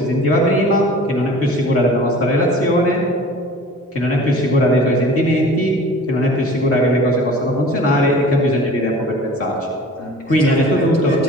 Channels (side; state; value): both; normal; correlation 0.43